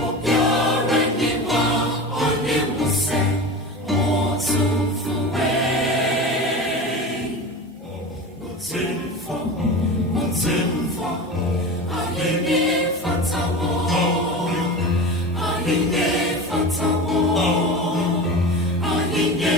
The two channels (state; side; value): normal; both; correlation 0.29